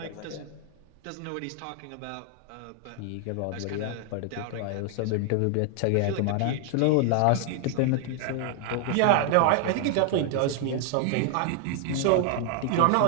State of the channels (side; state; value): both; different; correlation 0.00